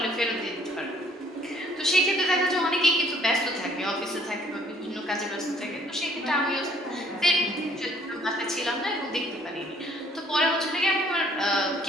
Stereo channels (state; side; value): normal; both; correlation 0.60